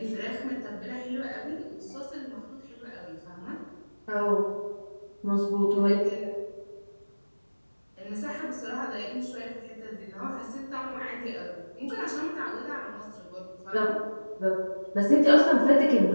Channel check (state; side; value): inverted; both; correlation -1.00